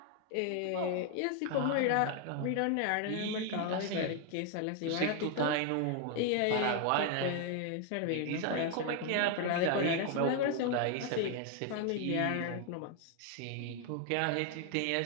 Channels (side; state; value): both; different; correlation 0.01